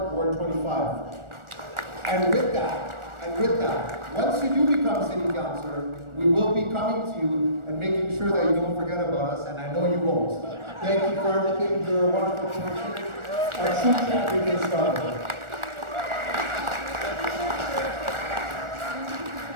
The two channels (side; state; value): left; late; 1.4 ms